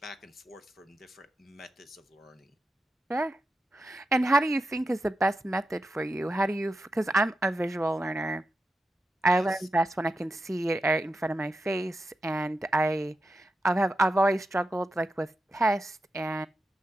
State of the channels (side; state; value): both; normal; correlation 0.89